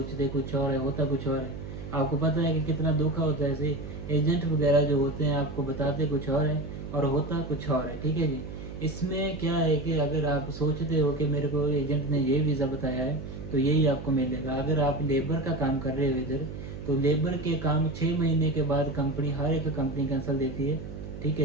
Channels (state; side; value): noise; right; hum, 10 dB below the sound